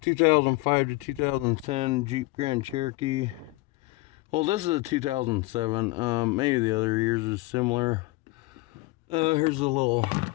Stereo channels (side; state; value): right; quieter; 21.4 dB